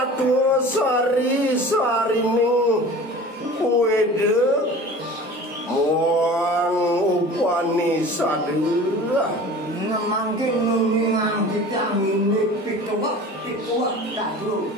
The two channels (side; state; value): both; normal; correlation 0.40